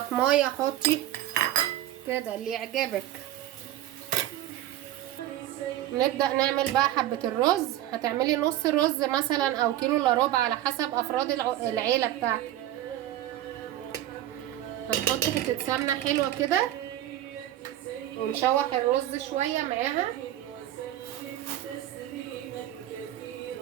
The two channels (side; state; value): left; quieter; 13.5 dB